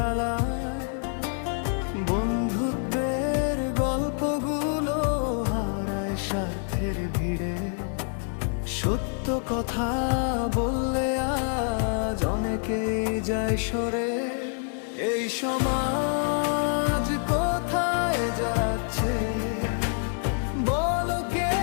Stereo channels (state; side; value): silent; right; 56 dB below the other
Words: বন্ধুত্বের গল্পগুলো হারায় স্বার্থের ভিড়ে, সত্য কথা বললে আজ অনেকেই যায় সরে। এই সমাজ কোথায় যাচ্ছে বলো কে